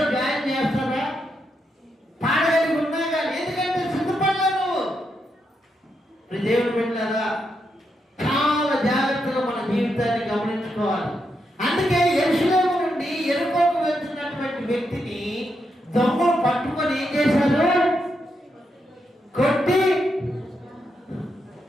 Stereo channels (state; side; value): normal; both; correlation 0.82